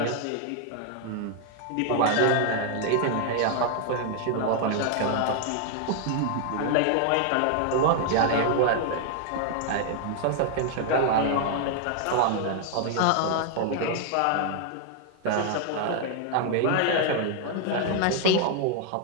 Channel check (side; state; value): both; different; correlation 0.00